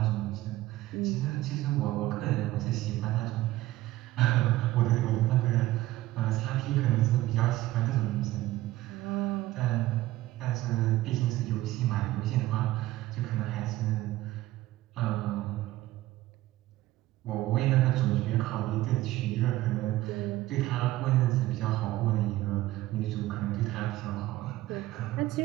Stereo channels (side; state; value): left; quieter; 16.4 dB